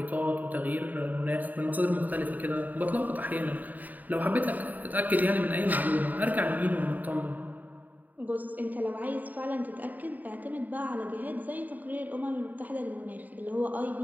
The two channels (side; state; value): left; late; 0.083 ms